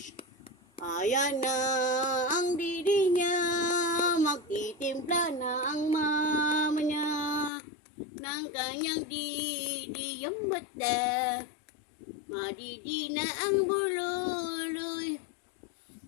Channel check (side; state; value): right; drops out; at 7.5 s